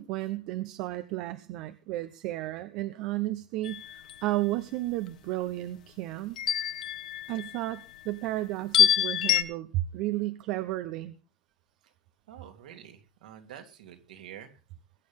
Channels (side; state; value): both; normal; correlation 0.34